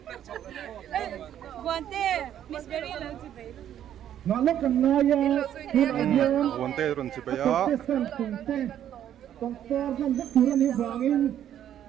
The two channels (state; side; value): quieter; left; 10.6 dB